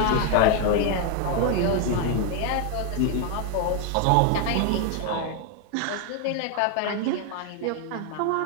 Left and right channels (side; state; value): both; different; correlation 0.01